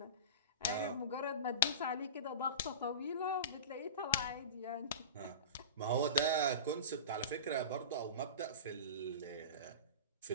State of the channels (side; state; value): both; inverted; correlation -0.32